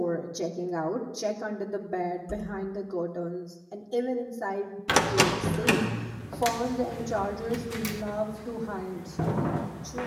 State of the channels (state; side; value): identical; both; correlation 1.00